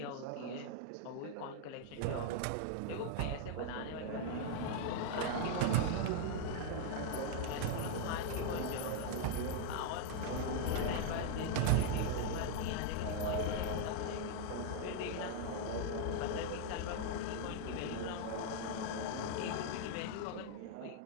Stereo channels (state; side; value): different; both; correlation -0.01